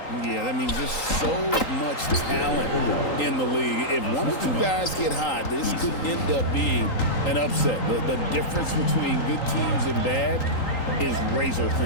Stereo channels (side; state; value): right; late; 3.8 ms